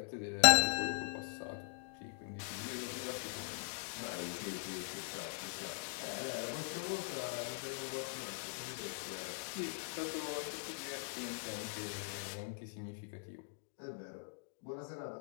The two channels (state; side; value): silent; right; digital silence